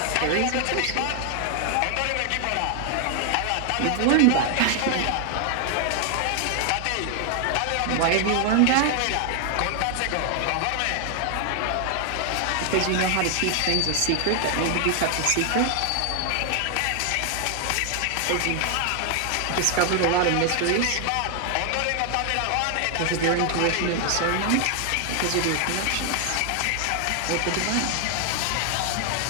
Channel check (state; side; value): different; both; correlation 0.00